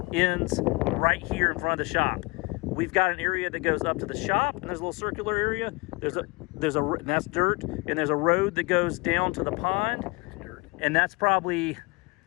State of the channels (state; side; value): quieter; right; 26.7 dB